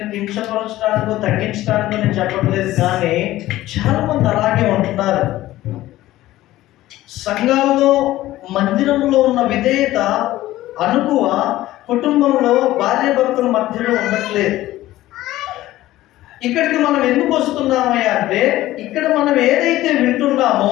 కించపరచడానికో తగ్గించడానికో నేను చెప్పట్లేదు, కానీ చాలా మంది అలాగే ఉంటున్నారు. సంఘాల్లో, మందిరంలో ఉన్న విధేయత, అనుకువ కుటుంబంలో భార్యాభర్తల మధ్యలో ఉండట్లేదు. ఇక్కడికి మనం ఎందుకు వస్తున్నామయ్యా అంటే, ఇక్కడ మనం ఏదైతే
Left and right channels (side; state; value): right; quieter; 15.7 dB